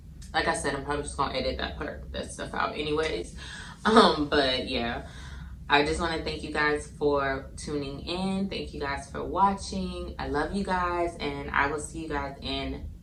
Like I said, I'm probably just gonna edit that stuff out anyways. But yeah, I just want to thank you guys for tuning in. Thank you guys for watching. I love you guys, and I will see you guys in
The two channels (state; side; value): identical; both; correlation 1.00